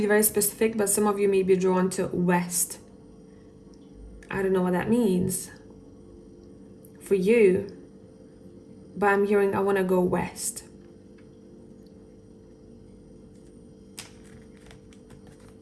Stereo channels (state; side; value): identical; both; correlation 1.00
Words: very specific, but some of you may be drawn to west. I don't know what that means. for you, but I'm hearing I want to go west.